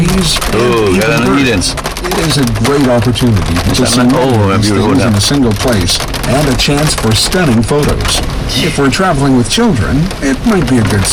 Oh, and even Garden of Eden. birds. It is a great opportunity to see all of these beautiful things in now. a single place and a chance for stunning photos. If we're traveling with children, it might be a good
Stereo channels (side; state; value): both; identical; correlation 1.00